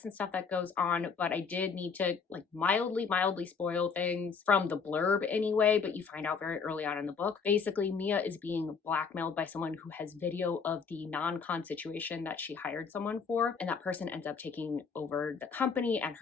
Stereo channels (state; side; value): quieter; right; 5.6 dB